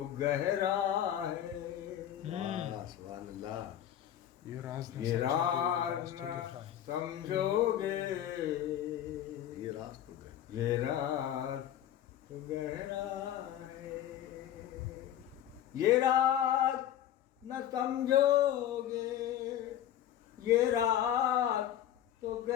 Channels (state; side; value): quieter; right; 11.2 dB